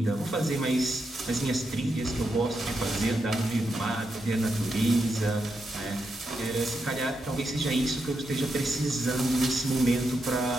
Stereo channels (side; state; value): both; normal; correlation 0.84